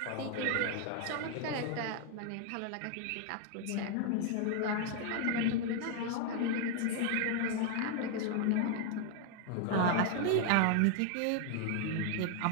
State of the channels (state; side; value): different; both; correlation 0.00